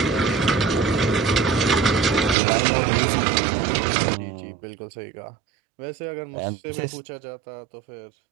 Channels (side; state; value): left; drops out; at 2.4 s